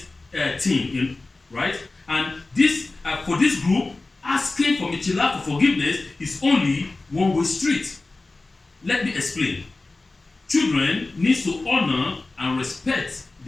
thing, right? And this for this group, asking for mechila, for forgiveness, is only one-way street. Let me explain. Children need to honor and respect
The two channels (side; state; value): right; quieter; 3.3 dB